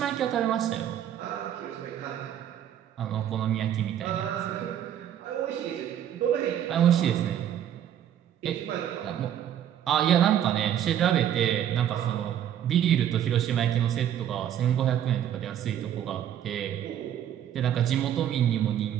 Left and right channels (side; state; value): left; quieter; 10.4 dB